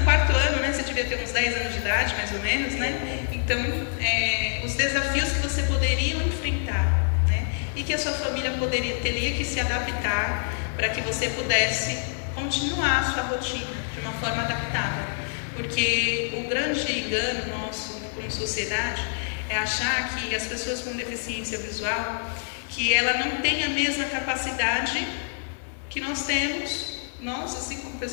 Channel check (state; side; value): silent; right; digital silence